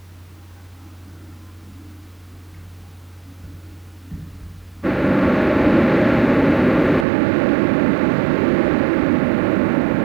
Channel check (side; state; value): left; drops out; at 7.1 s